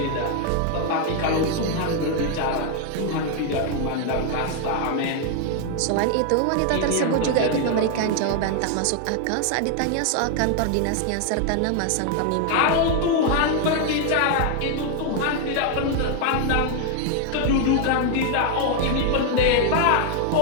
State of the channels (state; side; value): different; both; correlation 0.00